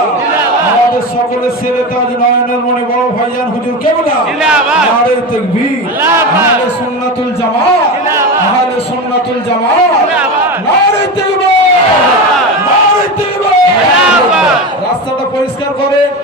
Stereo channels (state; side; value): normal; both; correlation 0.22